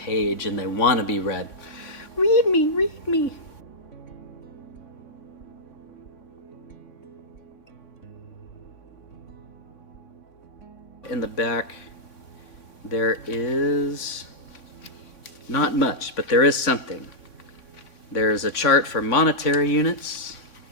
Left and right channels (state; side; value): late; right; 3.5 ms